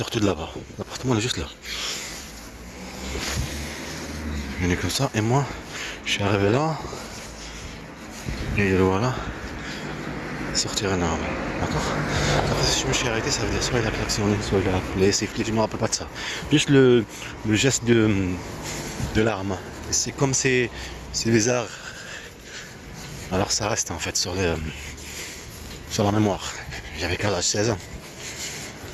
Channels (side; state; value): both; identical; correlation 1.00